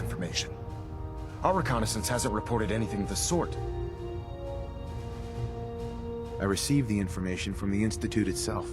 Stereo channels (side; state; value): both; identical; correlation 1.00